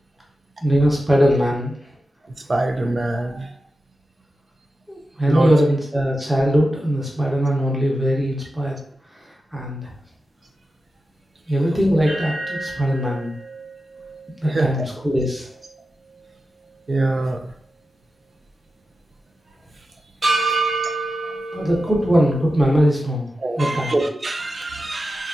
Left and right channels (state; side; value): normal; both; correlation 0.91